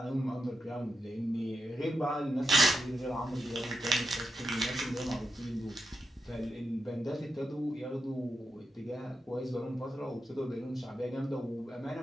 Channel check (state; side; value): normal; both; correlation 0.87